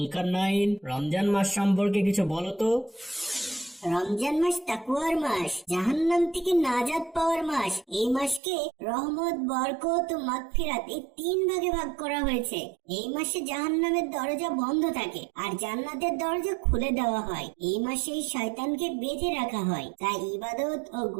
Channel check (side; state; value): left; drops out; at 8.4 s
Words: রমজান মাস সম্পর্কে কিছু বলো তো। রমজান মাস তাকওয়ার মাস, জাহান্নাম থেকে নাজাত পাওয়ার মাস। এই মাসকে রহমত, বরকত ও মাগফিরাত এই তিন ভাগে ভাগ করা হয়েছে। এই মাসে জাহান্নামের দরজা বন্ধ থাকে আর জান্নাতের দরজা খুলে দেওয়া হয়। এই মাসে শয়তানকে বেঁধে রাখা হয়, তাই ইবাদত ও